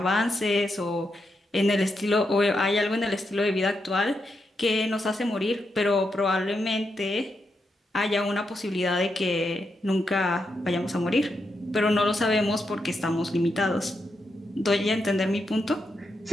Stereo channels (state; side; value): normal; both; correlation 0.84